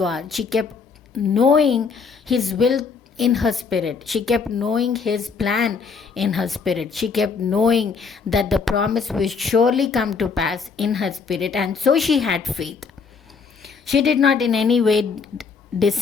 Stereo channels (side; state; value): right; quieter; 5.3 dB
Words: She kept knowing His will in her spirit. She kept knowing His plan in her spirit. She kept knowing that the promise will surely come to pass in her spirit. And so she had faith. She did not in any way